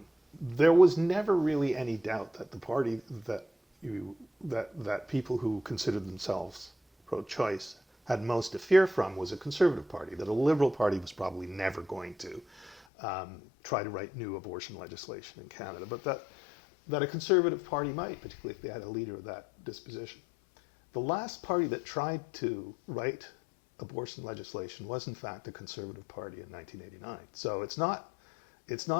there was never really any doubt that the party that people who considered themselves pro-choice had most to fear from was a Conservative Party, that a Liberal Party was probably never going to try to write new abortion legislation in Canada, but that a Conservative Party might, particularly if they had a leader of that disposition. The last party that tried to write abortion legislation was in fact a Conservative Party in 1989. So it's not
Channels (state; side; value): drops out; right; at 12.8 s